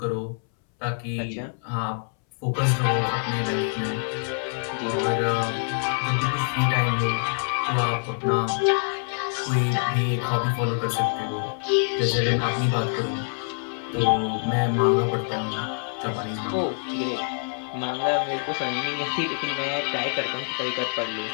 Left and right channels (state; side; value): silent; right; 61 dB below the other